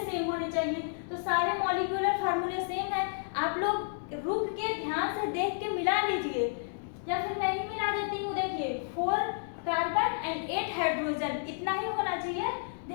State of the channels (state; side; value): silent; right; digital silence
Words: होने चाहिए। तो सारे मॉलिक्यूलर फार्मूले सेम है। आप लोग रुक के ध्यान से देख के मिला लीजिए, या फिर मैं ही मिला देती हूँ। देखिए 4 कार्बन एंड 8 हाइड्रोजन, इतना ही होना चाहिए।